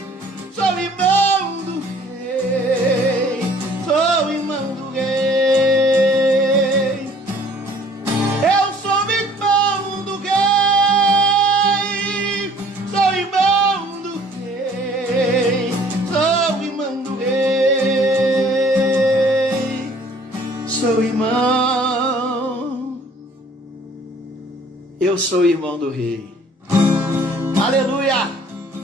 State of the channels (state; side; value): normal; both; correlation 0.55